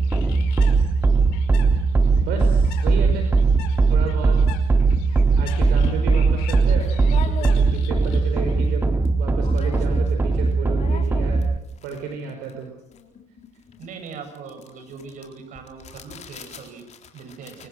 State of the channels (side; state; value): left; quieter; 3.7 dB